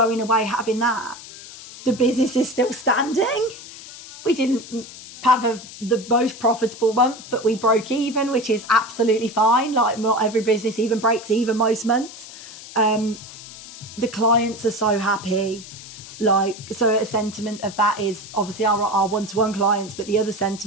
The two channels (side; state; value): left; noise; hiss, 15 dB below the sound